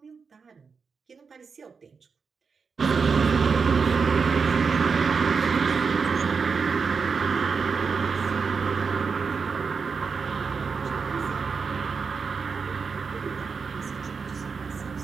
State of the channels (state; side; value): quieter; left; 5.3 dB